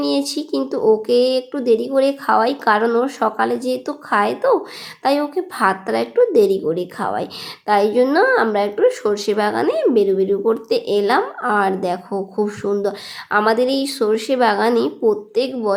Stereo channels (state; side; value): identical; both; correlation 1.00